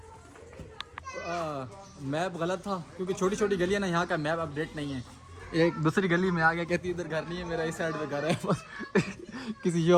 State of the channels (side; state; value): both; identical; correlation 1.00